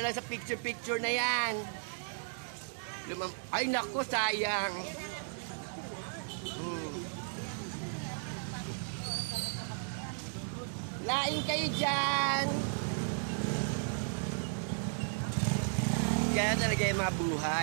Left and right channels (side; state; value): left; silent; digital silence